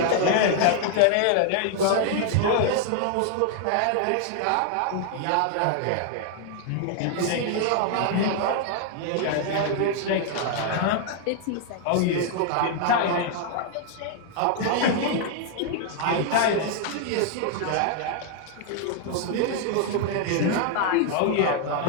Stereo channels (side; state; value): both; different; correlation 0.00